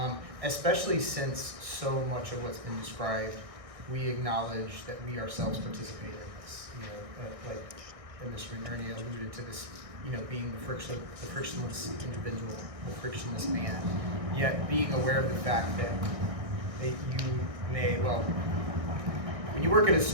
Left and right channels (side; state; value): left; late; 1.6 ms